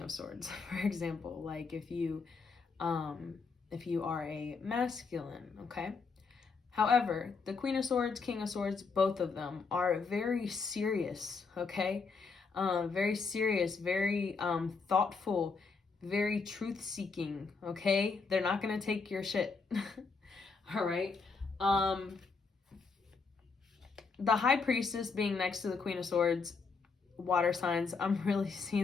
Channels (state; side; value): quieter; right; 4.7 dB